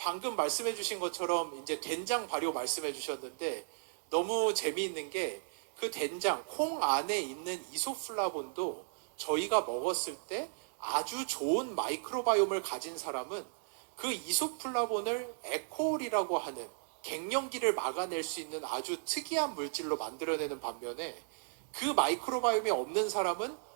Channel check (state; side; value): silent; left; 54 dB below the other